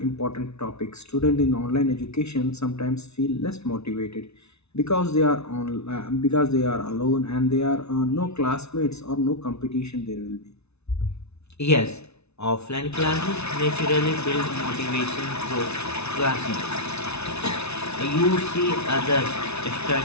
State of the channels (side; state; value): right; late; 0.81 ms